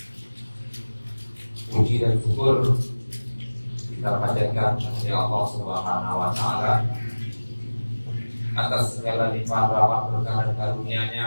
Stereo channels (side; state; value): both; inverted; correlation -1.00